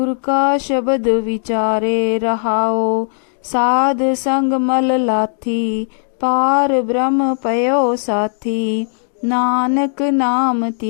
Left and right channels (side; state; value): right; silent; digital silence